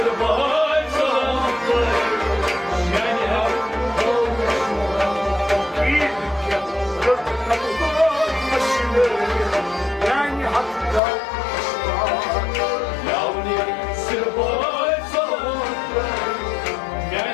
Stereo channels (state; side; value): drops out; right; at 11.0 s